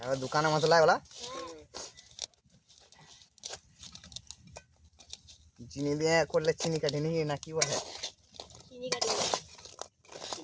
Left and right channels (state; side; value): identical; both; correlation 1.00